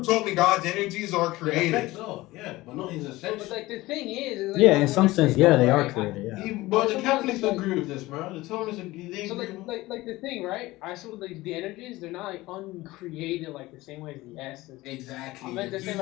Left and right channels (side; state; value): right; quieter; 19.0 dB